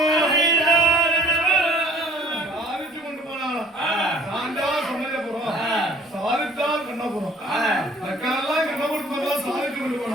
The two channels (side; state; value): both; normal; correlation 0.52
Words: சாதிச்சு கொண்டு போனாலும் சாந்தா சமயபுரம் சாதித்தால் கண்ணபுரம் மக்களெல்லாம் கண்ணபுரத்து சாதிச்சு கொண்டு